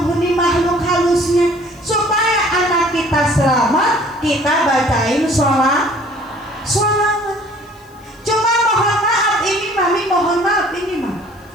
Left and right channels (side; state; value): left; noise; hiss, 30 dB below the sound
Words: makhluk halusnya, supaya anak kita selamat, kita bacain sholat. Cuma mohon maaf ini Mami, mohon maaf ini mah,